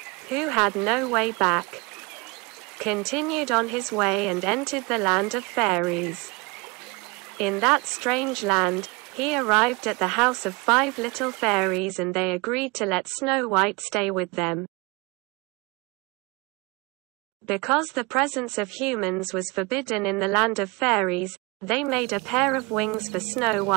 who had no way back, continued on his way and entered the land of fairies. In that strange land, he arrived at the house of 5 little fairies and they agreed to let Snow White stay with them. Because the presence of humans was forbidden in the land of fairies, they made a pair of wings for Snow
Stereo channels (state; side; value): quieter; left; 27.2 dB